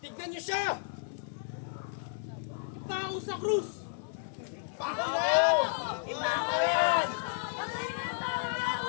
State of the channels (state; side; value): silent; right; digital silence